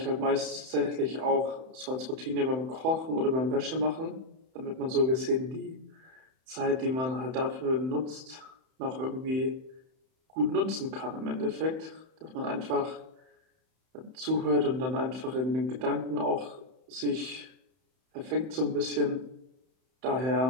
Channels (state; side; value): late; left; 31 ms